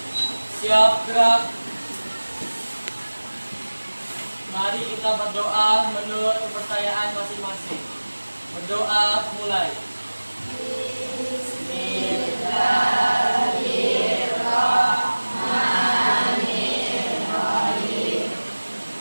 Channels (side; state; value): both; inverted; correlation -1.00